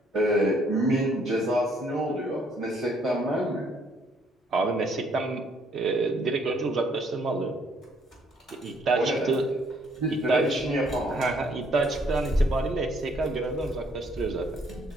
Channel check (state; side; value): normal; both; correlation 0.66